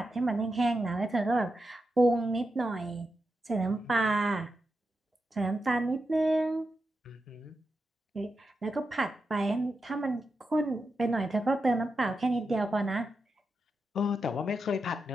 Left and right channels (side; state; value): both; normal; correlation 0.88